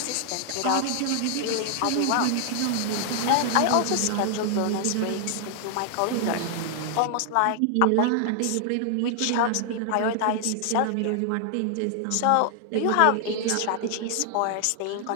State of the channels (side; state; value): both; different; correlation 0.00